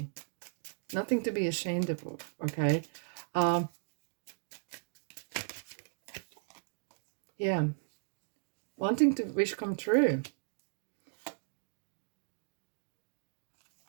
nothing to be ashamed of, okay? Yeah, wanting to wish come true.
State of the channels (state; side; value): silent; left; digital silence